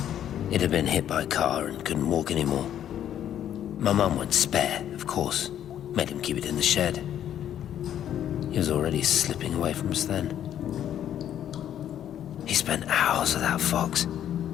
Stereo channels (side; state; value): right; quieter; 10.5 dB